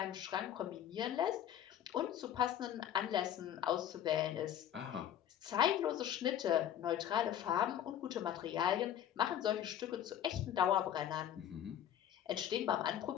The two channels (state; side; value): quieter; right; 10.6 dB